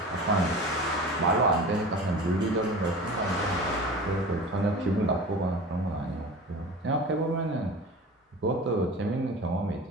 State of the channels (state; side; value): normal; both; correlation 0.35